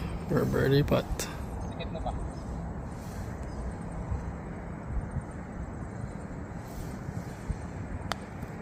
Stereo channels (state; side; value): identical; both; correlation 1.00